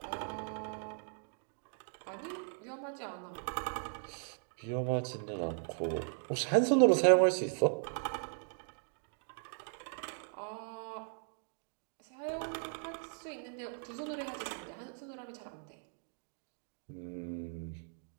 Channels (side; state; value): left; silent; 53 dB below the other